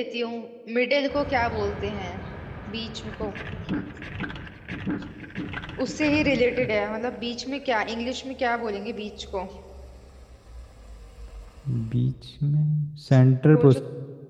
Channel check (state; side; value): identical; both; correlation 1.00